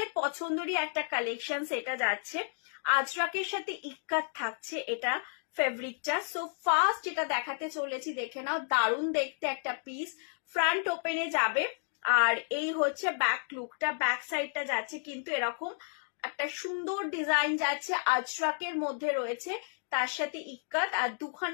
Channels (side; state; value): right; silent; digital silence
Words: পছন্দেরই একটা কালেকশন এটা যাচ্ছে। আজরাকের সাথে ইক্কাত থাকছে এটা ফেব্রিকটা। সো ফার্স্ট যেটা দেখাতে চলেছি দেখে নাও, দারুণ দেখতে একটা পিস, ফ্রন্ট ওপেনে যাবে। আর এই হচ্ছে ব্যাক লুকটা, ব্যাক সাইডটা যাচ্ছে কিন্তু এরকম একটা সুন্দর ডিজাইন যাচ্ছে, আজরাকের মধ্যে রয়েছে, তার সাথে ইক্কাত, আর